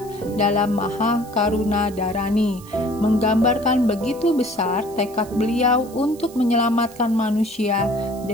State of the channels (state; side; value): noise; right; hiss, 21 dB below the sound